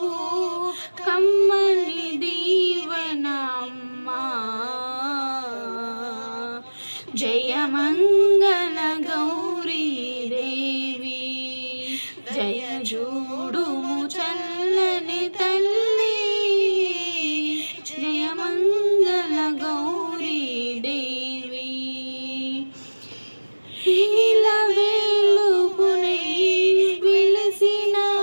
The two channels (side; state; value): both; inverted; correlation -1.00